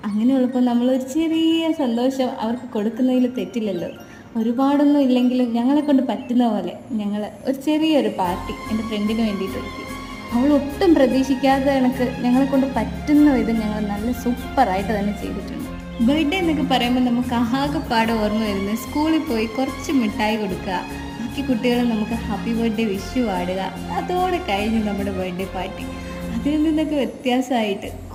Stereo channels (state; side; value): identical; both; correlation 1.00